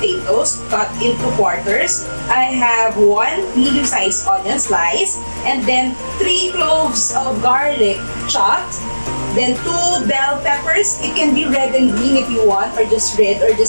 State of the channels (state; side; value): inverted; both; correlation -1.00